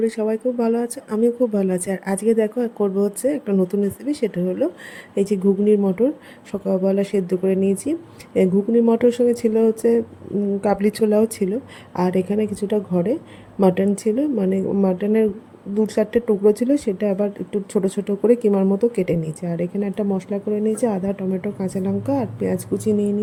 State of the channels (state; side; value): identical; both; correlation 1.00